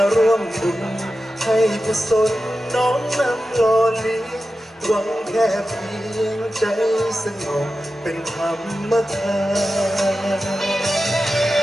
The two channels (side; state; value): both; normal; correlation 0.93